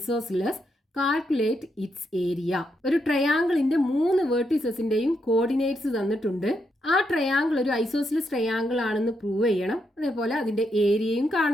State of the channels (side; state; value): both; normal; correlation 0.80